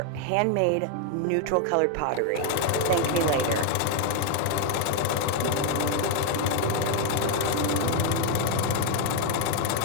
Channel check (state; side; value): different; both; correlation 0.01